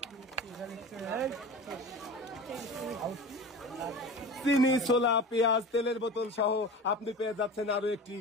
চিনি, ছোলা, পেঁয়াজ, তেলের বোতল সহ আপনি পেয়ে যাচ্ছেন আরো একটি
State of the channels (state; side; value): normal; both; correlation 0.33